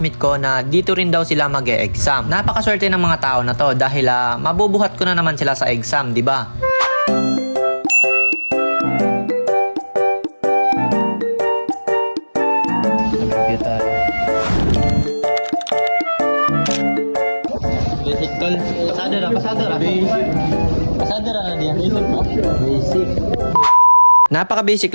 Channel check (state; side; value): inverted; both; correlation -1.00